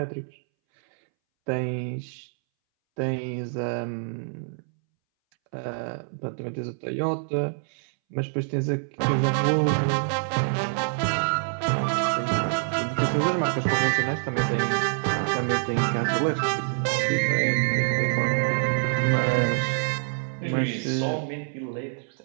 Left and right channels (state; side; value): silent; left; 61 dB below the other